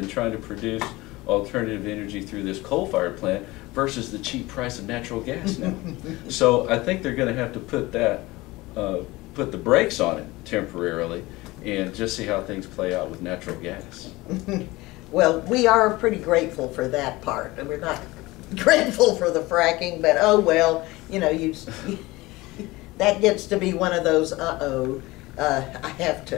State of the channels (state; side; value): quieter; right; 20.6 dB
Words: trying to produce alternative energy through this coal-fired plant versus the cheap price of natural gas now. So I think they're going to have to put the brakes on it temporarily and just see how things play out with natural gas. Well, we are pretty grateful for that part. We're not grateful for the fracking, but oh well, you know, that gets to be one of those I have